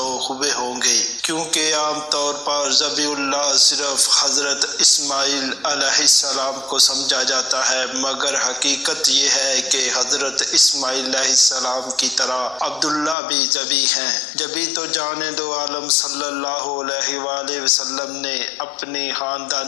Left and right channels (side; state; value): right; drops out; at 13.2 s